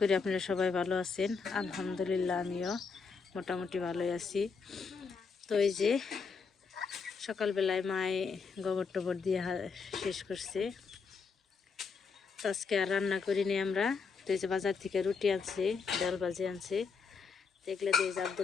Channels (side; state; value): right; quieter; 5.3 dB